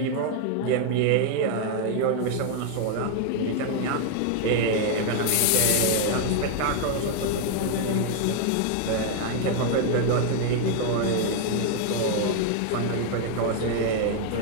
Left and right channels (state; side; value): different; both; correlation 0.00